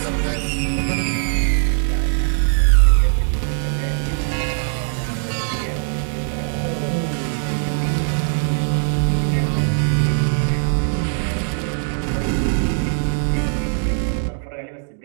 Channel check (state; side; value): silent; left; digital silence